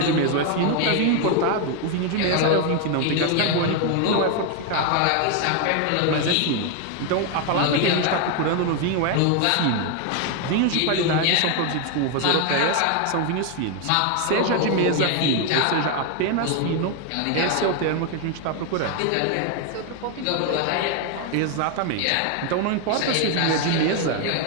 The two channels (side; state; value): both; different; correlation 0.01